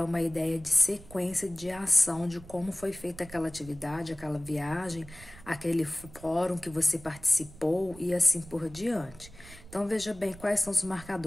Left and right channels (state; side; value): noise; right; rumble, 19 dB below the sound